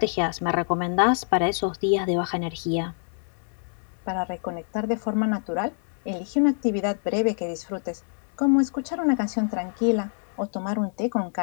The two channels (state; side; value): silent; right; 55 dB below the other